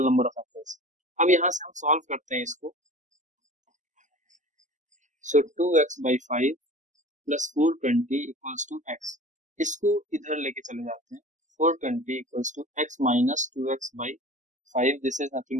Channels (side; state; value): left; late; 0.36 ms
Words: नंबर ऑफ एप्पल्स। अब यहाँ से हम सॉल्व करते हैं इसको। So 2x by 5 plus 420 equals to x, इसको इधर लेके चले जाते हैं। 420 equals to x minus 2x by 5, this is